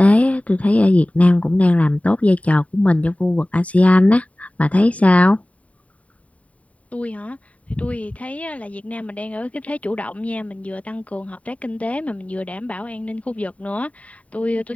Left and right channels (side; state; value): right; late; 0.067 ms